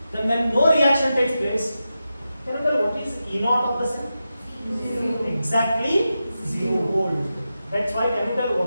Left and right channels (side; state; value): both; inverted; correlation -0.90